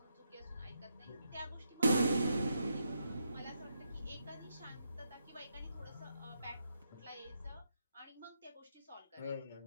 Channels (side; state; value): both; inverted; correlation -0.80